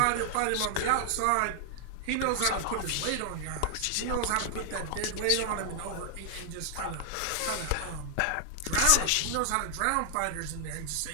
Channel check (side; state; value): both; different; correlation 0.00